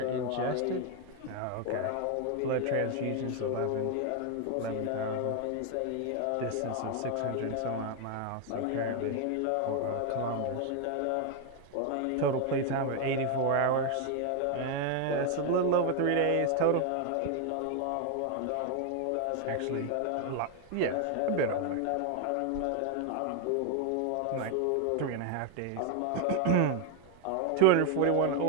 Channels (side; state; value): both; different; correlation 0.01